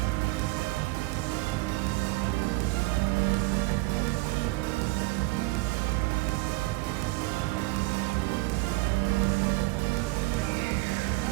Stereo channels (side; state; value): left; quieter; 22.9 dB